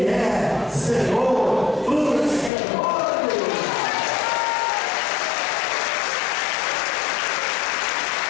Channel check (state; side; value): drops out; right; at 2.5 s